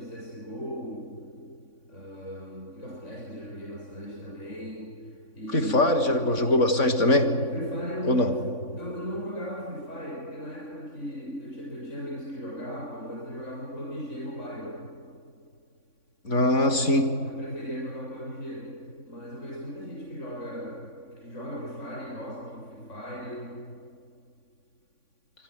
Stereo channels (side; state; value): right; late; 3.6 ms